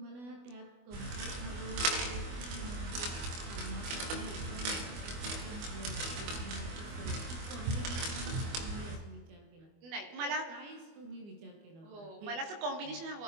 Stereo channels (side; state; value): left; late; 24 ms